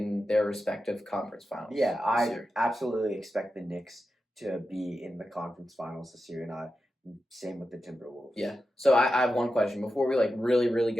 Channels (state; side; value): normal; both; correlation 0.91